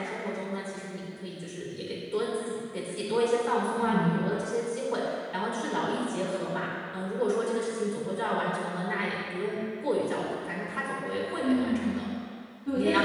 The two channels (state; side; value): identical; both; correlation 1.00